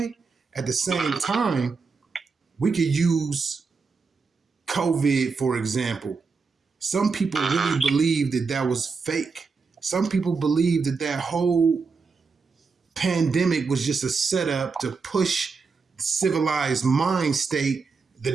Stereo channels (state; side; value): quieter; left; 4.8 dB